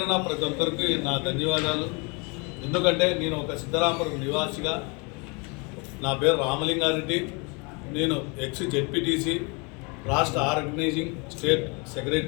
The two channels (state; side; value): quieter; right; 31.2 dB